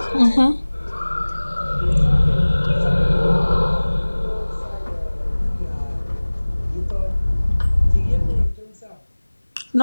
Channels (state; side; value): inverted; both; correlation -1.00